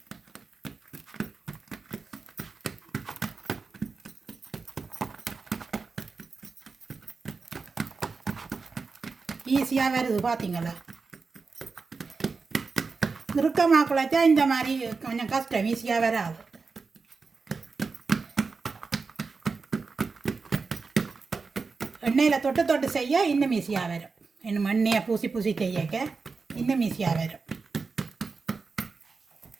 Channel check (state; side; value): quieter; left; 4.5 dB